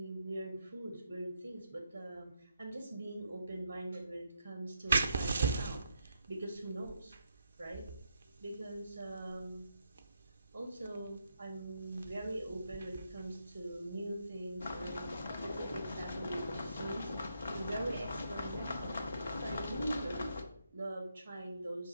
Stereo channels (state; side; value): inverted; both; correlation -0.80